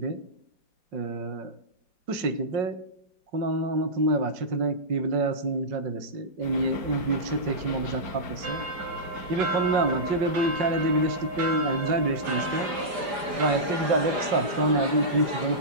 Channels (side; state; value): left; late; 4.9 ms